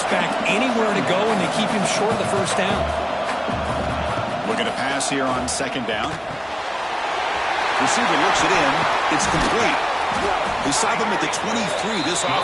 back anywhere to go, and they keep him short of the 1st down. Looking to pass here on 2nd down. Receiver looks it in. It's complete. We saw them at the 23. This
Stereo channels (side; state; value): both; identical; correlation 1.00